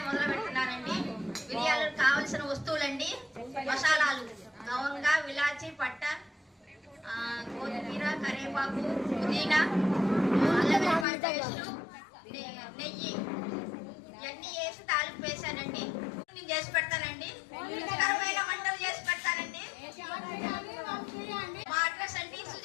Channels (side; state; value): right; drops out; at 11.1 s